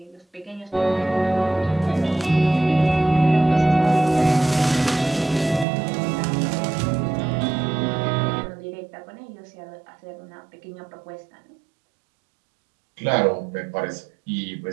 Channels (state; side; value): drops out; left; at 5.7 s